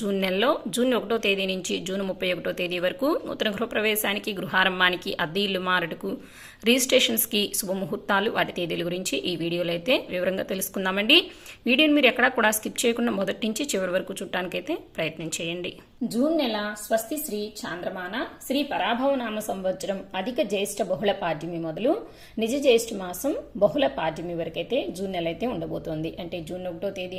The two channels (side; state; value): both; identical; correlation 1.00